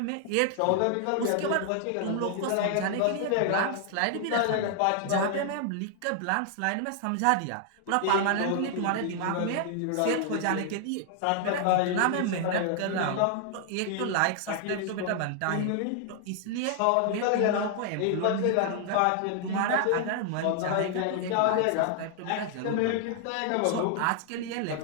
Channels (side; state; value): both; different; correlation 0.00